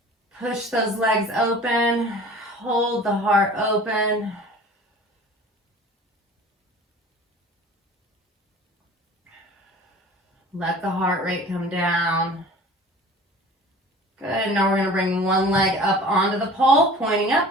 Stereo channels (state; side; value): normal; both; correlation 0.44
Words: Push those legs open. Hold the heart open. Let the heart rate come down. Good. Now we're going to bring one leg up onto the pole, pointing up.